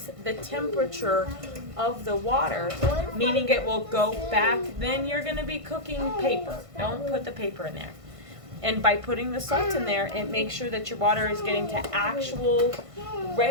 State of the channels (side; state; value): left; late; 1.5 ms